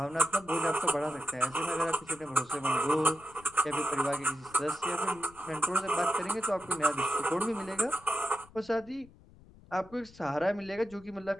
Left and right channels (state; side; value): noise; left; rumble, 23 dB below the sound